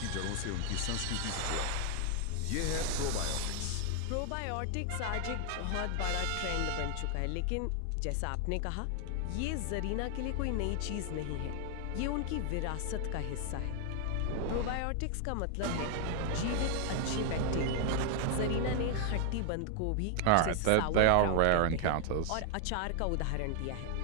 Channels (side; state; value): both; different; correlation 0.00